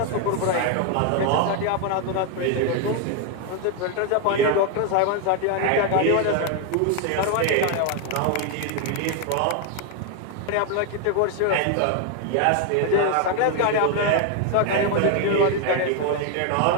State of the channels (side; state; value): both; different; correlation 0.01